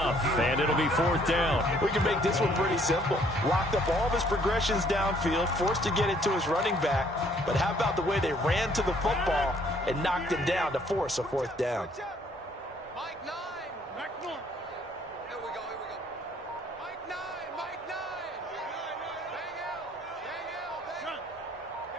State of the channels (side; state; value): both; normal; correlation 0.63